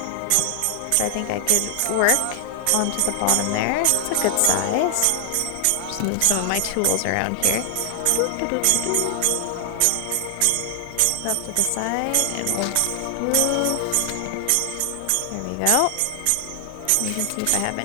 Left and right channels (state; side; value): different; both; correlation 0.00